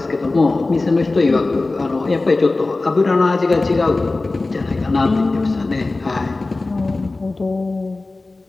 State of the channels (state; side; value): quieter; right; 3.3 dB